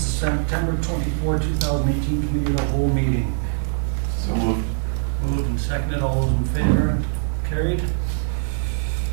September 24, 2018, committee of the whole meeting. So moved. Moved and seconded, all those in favor? Carried.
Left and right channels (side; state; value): left; silent; 64 dB below the other